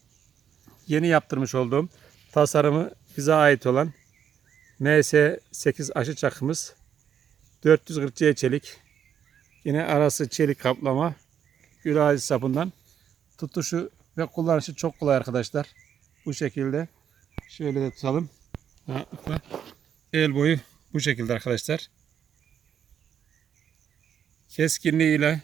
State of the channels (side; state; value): left; quieter; 8.7 dB